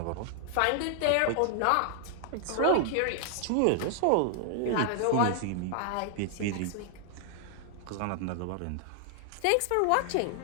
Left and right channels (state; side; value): different; both; correlation 0.00